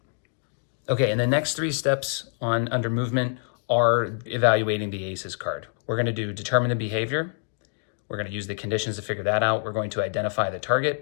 Okay, and the next 3 steps under movement are evaluating the ACES card. We're going to do determine the behavior. We're going to use the conditions to figure that out. We're going to identify the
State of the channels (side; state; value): right; silent; digital silence